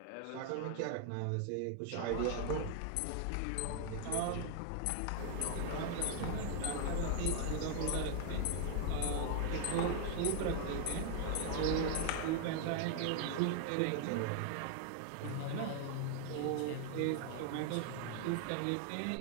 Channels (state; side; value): different; both; correlation 0.00